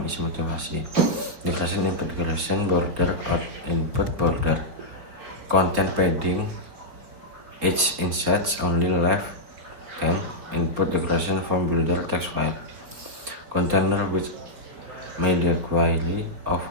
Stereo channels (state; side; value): late; left; 4.5 ms